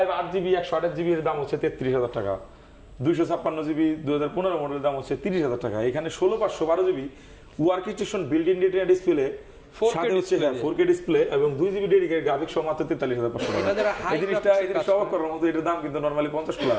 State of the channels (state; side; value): identical; both; correlation 1.00